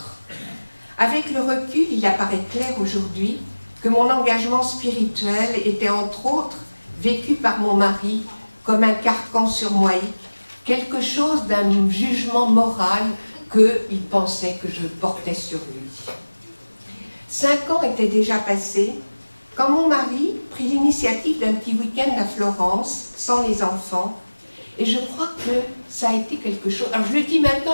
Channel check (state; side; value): inverted; both; correlation -1.00